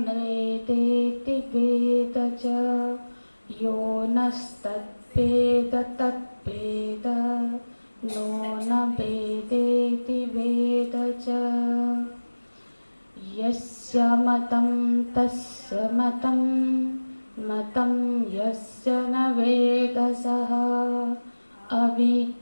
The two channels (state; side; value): inverted; both; correlation -1.00